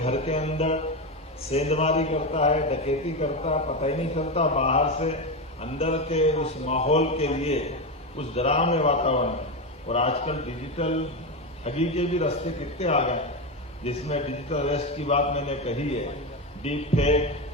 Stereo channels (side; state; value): both; normal; correlation 0.14